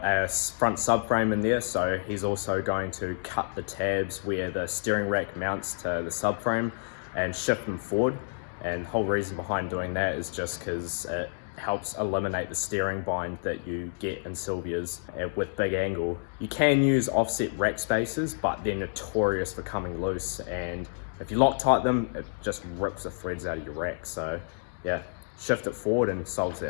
a front subframe in there, so he's also going to cut the tabs where the steering rack mounts to the subframe and shift them forward. And the whole reason behind doing that is just because it helps eliminate the steering bind that you get in Silvia's with big angle. You can use offset rack spacers, but they're notorious for coming loose, and if you Loctite them, it just rips the threads out of your rack. So yeah, shift it forward and solves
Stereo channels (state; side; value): silent; right; digital silence